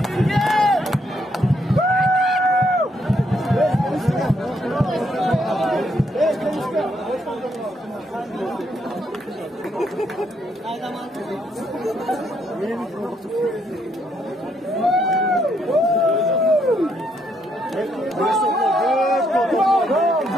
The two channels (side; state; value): both; normal; correlation 0.74